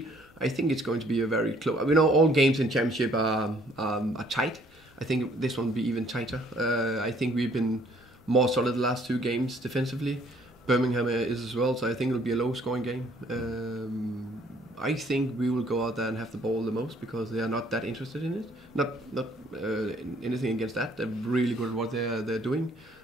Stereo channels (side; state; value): both; normal; correlation 0.61